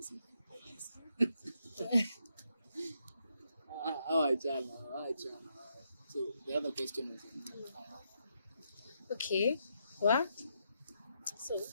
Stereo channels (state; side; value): inverted; both; correlation -0.79